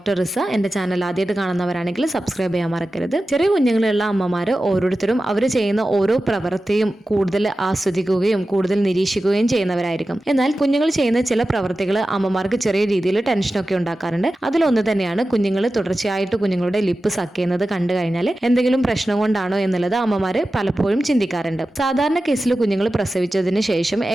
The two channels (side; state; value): both; normal; correlation 0.94